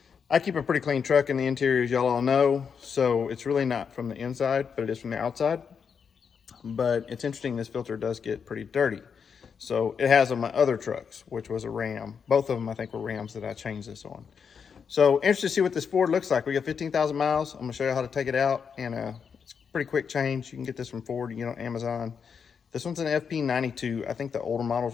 I keep a pretty clean truck in the interior, as y'all all know. So it's really not from the inside, but it is from the outside. But it's interesting, this filter does get pretty dirty. So it has on my other trucks, which was a Ram. Both of them, I think, were Rams that I changed this on. So interested to see what this Ford looks like. We got 15,000 miles. I'm gonna show you how to take it out, and it's a pretty quick change. You can get this from Ford, on Amazon. This one's an FP92. I think the older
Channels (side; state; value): right; quieter; 6.5 dB